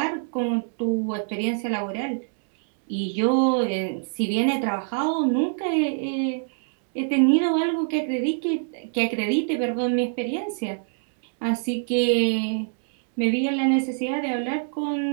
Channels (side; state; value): left; silent; digital silence